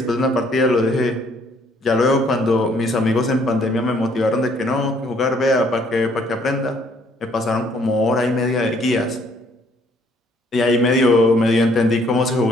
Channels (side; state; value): both; normal; correlation 0.64